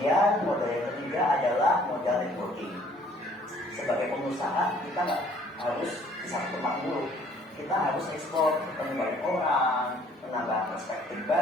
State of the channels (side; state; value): both; normal; correlation 0.58